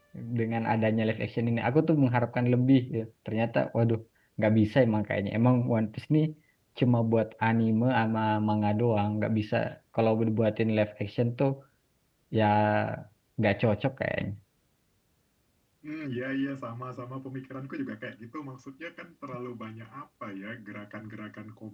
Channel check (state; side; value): identical; both; correlation 1.00